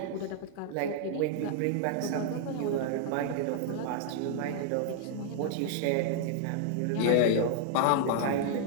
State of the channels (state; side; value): different; both; correlation -0.01